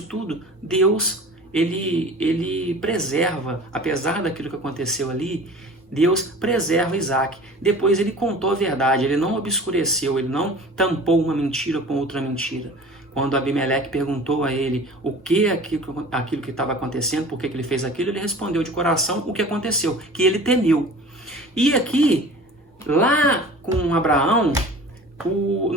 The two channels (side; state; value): both; normal; correlation 0.41